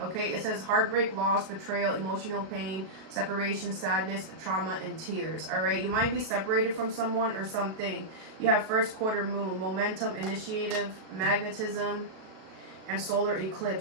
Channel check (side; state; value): left; late; 37 ms